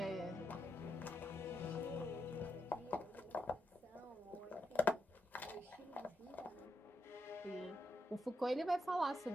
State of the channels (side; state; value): both; normal; correlation 0.82